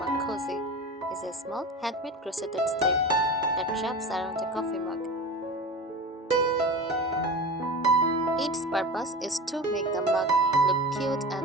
mug cozy, is a small handmade crocheted sleeve that wraps around a coffee mug. Its purpose is to make the mug look cute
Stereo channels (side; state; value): both; normal; correlation 0.30